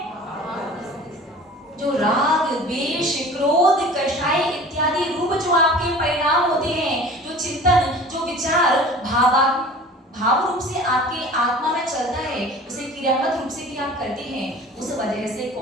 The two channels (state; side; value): normal; both; correlation 0.42